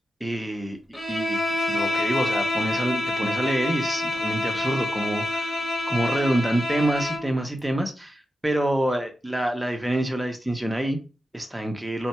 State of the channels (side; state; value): both; normal; correlation 0.90